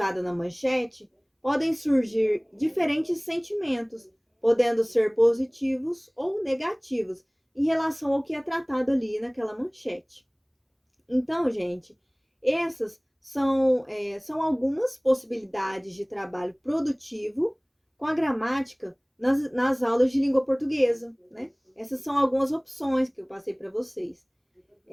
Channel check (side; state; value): both; identical; correlation 1.00